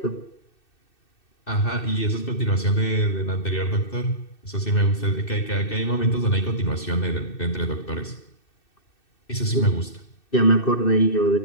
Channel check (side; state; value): right; late; 2.6 ms